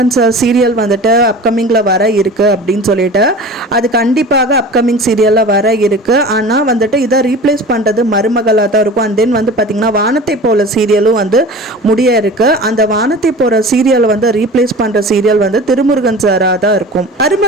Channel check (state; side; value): normal; both; correlation 0.38